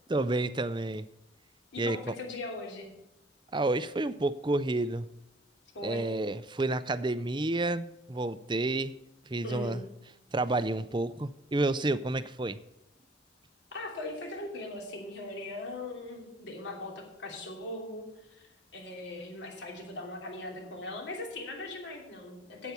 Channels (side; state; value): both; normal; correlation 0.54